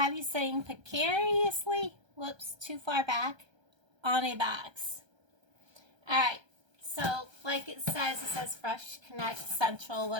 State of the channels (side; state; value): left; late; 1.3 ms